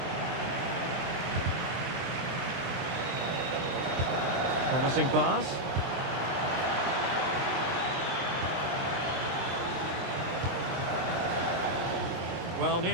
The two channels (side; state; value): left; late; 23 ms